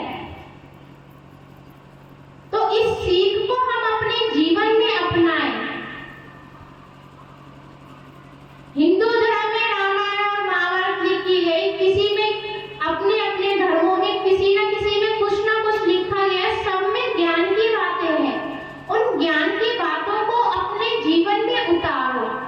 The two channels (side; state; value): both; identical; correlation 1.00